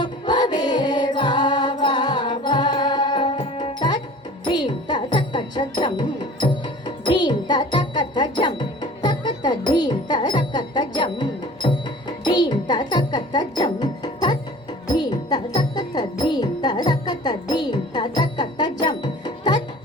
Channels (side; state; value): both; normal; correlation 0.44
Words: வா வா வா. Dream ta takata jam, dream ta takata jam, takata dream ta takata jam, dream ta takata jam, tat dream ta takata dream ta takata dream ta takata jam, tat